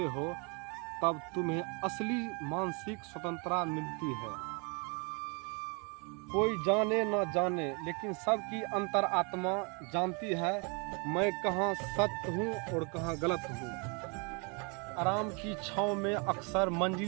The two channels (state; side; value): quieter; left; 33.8 dB